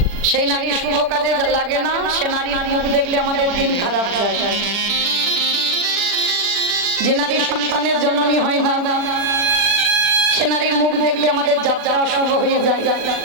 সেই নারী শুভ কাজে লাগে না, সে নারীর মুখ দেখলে আমাদের দিন খারাপ যায়। যে নারী সন্তানের জননী হয় না সে নারীর মুখ দেখলে আমাদের যাত্রা অশুভ হয়ে যায়।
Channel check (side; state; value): left; late; 40 ms